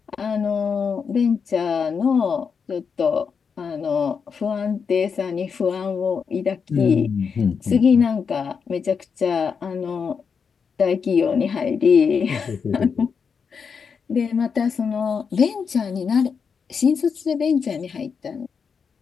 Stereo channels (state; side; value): quieter; right; 6.1 dB